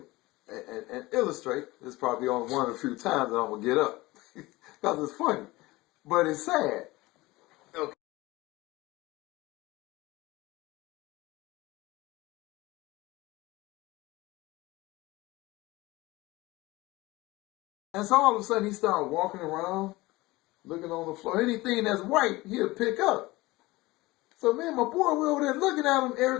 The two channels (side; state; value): right; quieter; 20.4 dB